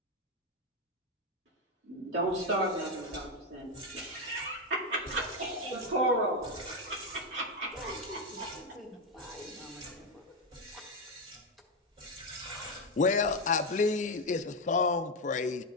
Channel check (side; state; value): both; normal; correlation 0.07